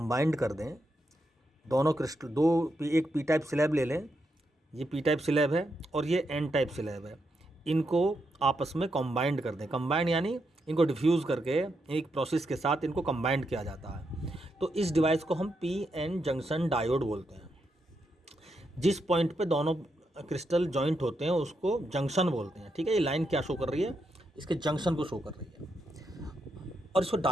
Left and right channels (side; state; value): both; normal; correlation 0.82